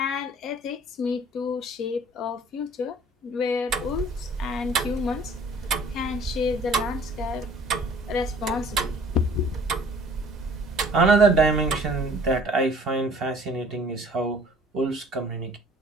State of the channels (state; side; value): normal; both; correlation 0.52